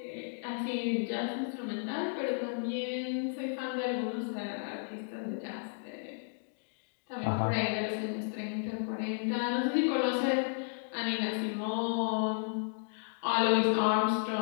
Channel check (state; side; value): silent; right; digital silence